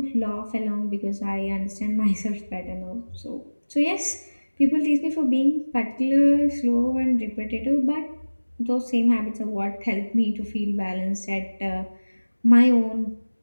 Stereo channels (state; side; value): inverted; both; correlation -1.00